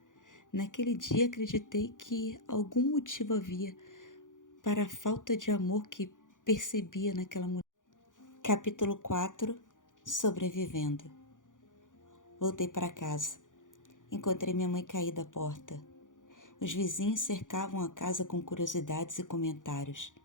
naquele dia acreditei que algum motivo havia para a falta de amor que percebia naquela mulher. Capítulo 4. Sobrevivendo. Voltei para casa. Encontrei minha mãe caída à porta. Os vizinhos cercavam a casa com curiosidades e comentários.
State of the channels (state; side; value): late; right; 0.88 ms